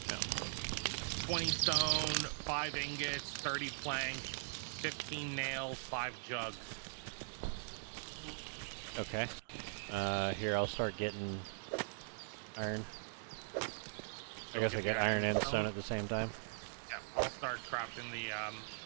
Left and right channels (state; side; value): silent; left; digital silence